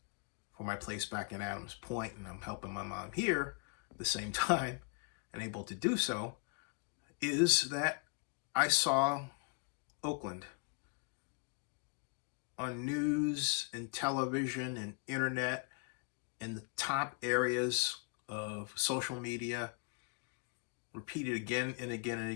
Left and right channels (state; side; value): quieter; right; 34.6 dB